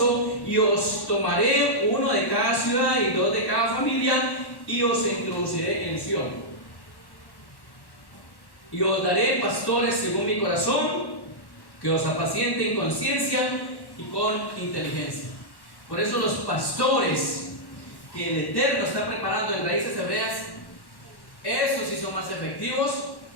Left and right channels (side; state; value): right; late; 1.1 ms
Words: y os tomaré uno de cada ciudad y 2 de cada familia, y os introduciré en Sión. Y os daré pastores según mi corazón, que os apacienten con ciencia y con inteligencia. Por eso los pastores que el Eterno está preparando en Raíces Hebreas, esos sí son más efectivos